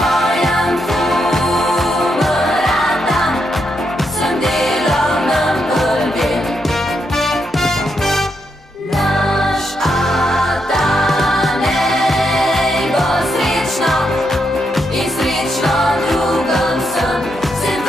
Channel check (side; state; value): both; normal; correlation 0.81